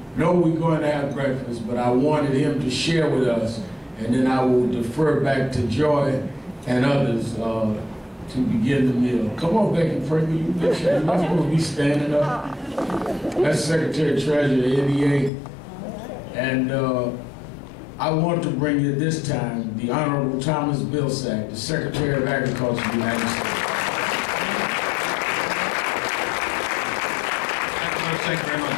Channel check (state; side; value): drops out; right; at 15.3 s